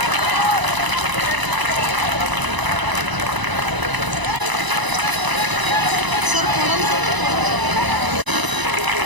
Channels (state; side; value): late; left; 1.0 ms